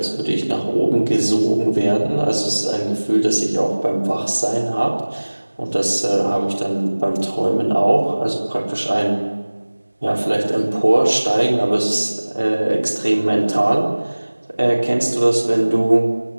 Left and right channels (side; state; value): both; inverted; correlation -1.00